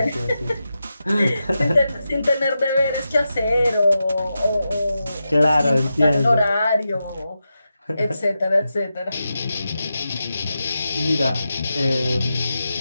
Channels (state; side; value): inverted; both; correlation -0.89